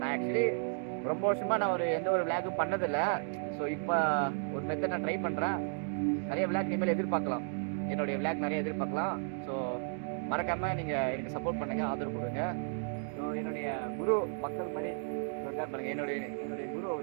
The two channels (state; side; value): silent; left; 55 dB below the other